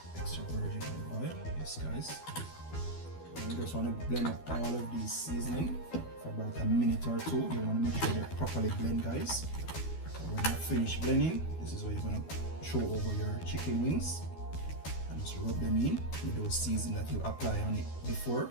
extra virgin olive oil. Yes, guys. And you just want to blend up all of these seasoning for about a minute or two. You want to make sure they're properly blend, guys. So when you finish blending, this is what you're going to throw over your chicken wings and just rub them in with those seasonings that you apply on it before.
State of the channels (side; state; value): right; late; 12 ms